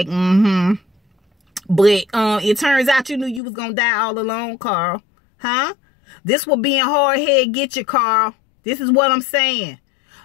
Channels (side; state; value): right; drops out; at 3.4 s